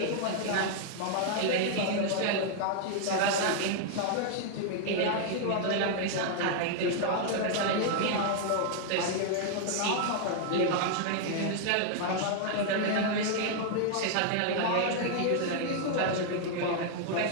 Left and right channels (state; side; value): different; both; correlation 0.00